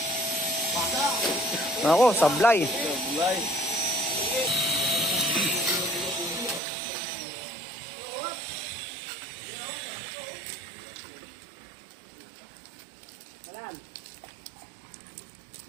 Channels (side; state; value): left; drops out; at 6.6 s